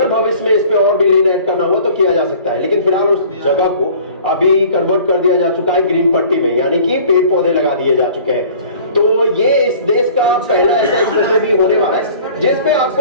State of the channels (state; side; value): inverted; both; correlation -0.48